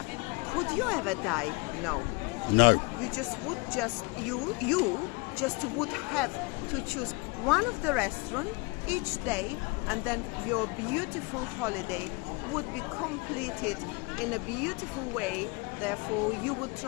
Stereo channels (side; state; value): right; quieter; 28.2 dB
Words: would you ever die? No. No. You just would you just would have to choose one of the restaurants each day, and then your beautiful holiday would be completed in a beautiful way. Therefore, you would